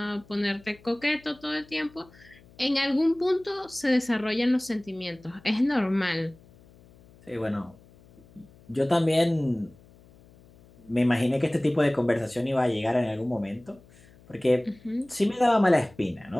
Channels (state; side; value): noise; left; hum, 26 dB below the sound